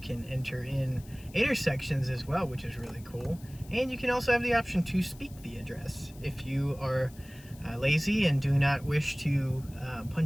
enter in intersections as well, which is really cool. And you can also have the option to speak the address if you are lazy and do not wish to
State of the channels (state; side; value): noise; left; hiss, 23 dB below the sound